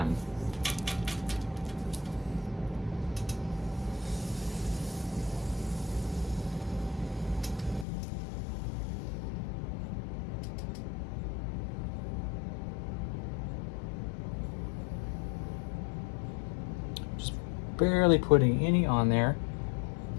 Just barely putting any on there.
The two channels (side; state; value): right; drops out; at 7.9 s